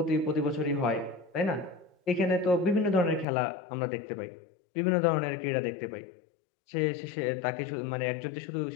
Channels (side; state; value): right; drops out; at 3.2 s